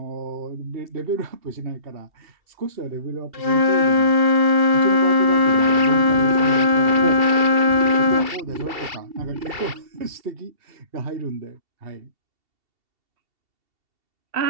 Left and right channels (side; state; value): left; late; 2.7 ms